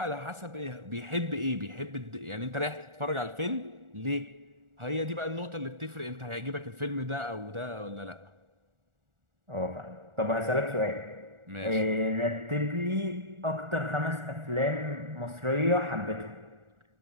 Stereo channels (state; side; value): late; left; 1.4 ms